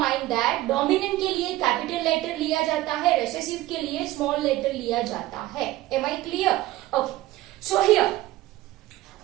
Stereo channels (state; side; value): quieter; left; 16.4 dB